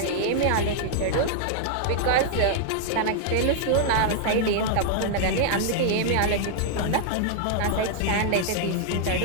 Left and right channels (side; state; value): both; different; correlation 0.00